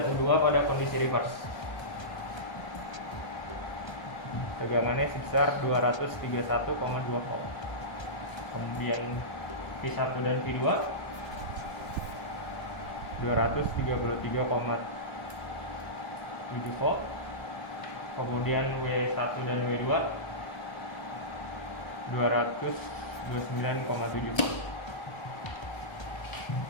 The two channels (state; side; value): late; right; 1.3 ms